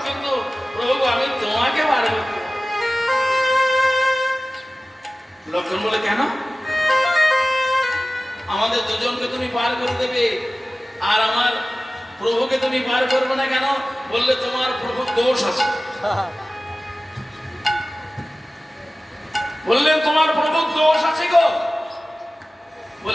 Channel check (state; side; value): normal; both; correlation 0.97